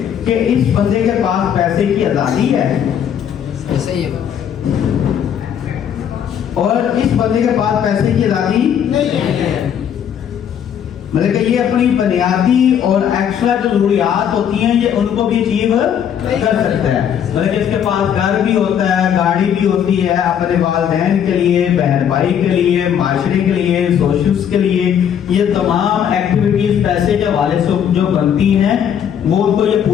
कि इस बंदे के पास पैसे की आजादी है, ऐसे ही है। और इस बंदे के पास पैसे की आजादी नहीं है। मतलब कि ये अपनी बुनियादी और एक्स्ट्रा जो जरूरियात होती हैं ये उनको भी अचीव कर सकता है। मतलब कि इसके पास घर भी होता है, गाड़ी भी होती है, अपने वालिदैन के लिए, बहन भाई के लिए, माशरे के लिए, सोशल्स के लिए, ये तमाम एक्टिविटीज पैसे के हवाले से जो बनती हैं वो उनको ये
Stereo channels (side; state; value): right; quieter; 8.8 dB